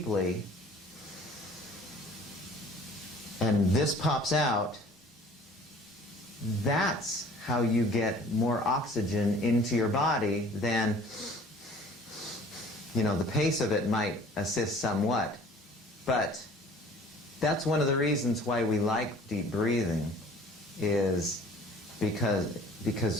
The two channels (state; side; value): normal; both; correlation 0.50